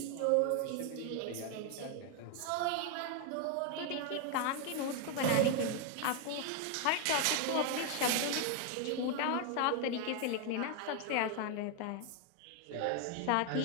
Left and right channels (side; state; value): both; different; correlation 0.01